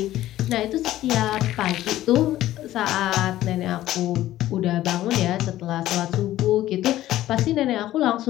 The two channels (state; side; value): quieter; right; 14.3 dB